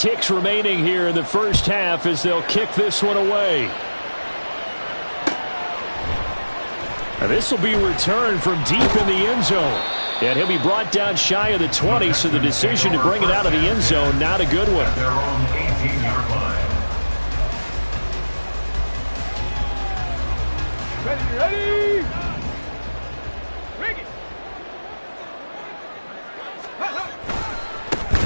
remaining here in the first half as they'll kick this one away. Now this will be returned from deep in the end zone. And he'll be brought down shy of the 20, so the decision to bring it out of the end zone, not a good one. Their own 18-yard line. Ready? Bring it.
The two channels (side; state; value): both; inverted; correlation -1.00